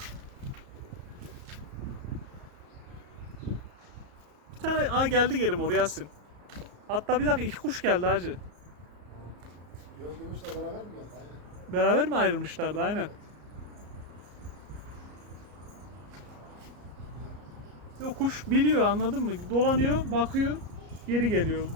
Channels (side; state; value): left; late; 34 ms